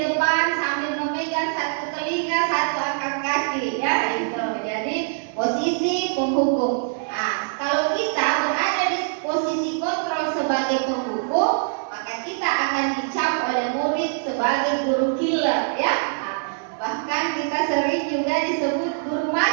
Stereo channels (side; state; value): left; silent; digital silence